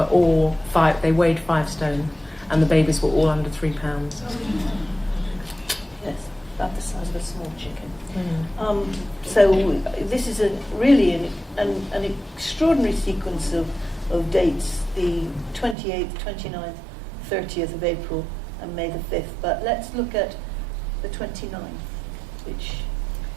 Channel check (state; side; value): drops out; left; at 15.8 s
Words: all they weighed 5 stone, and the babies were all under 3 pounds. Yes, about the size of a small chicken. So this is really an extraordinary sequence of dates, the 28th, 29th, 30th of April and May the 5th. But let's look at the 29th, which